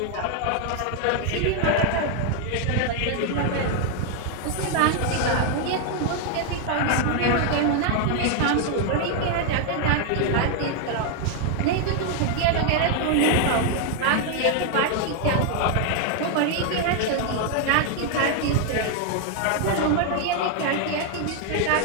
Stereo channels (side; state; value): both; different; correlation 0.00